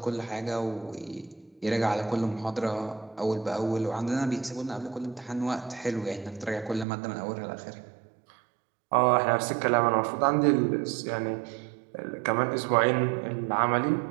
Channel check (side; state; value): left; drops out; at 6.9 s